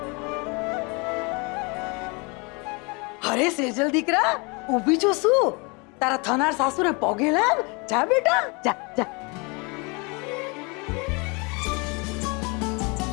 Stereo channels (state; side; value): quieter; right; 30.1 dB